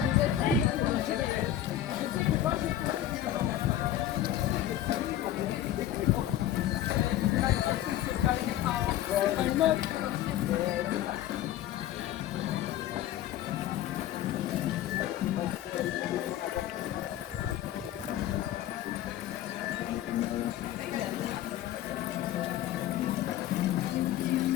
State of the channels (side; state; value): right; quieter; 12.2 dB